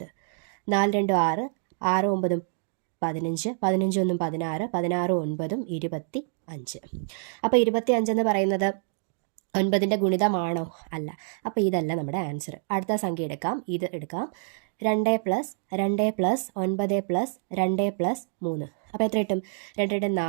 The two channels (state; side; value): silent; left; digital silence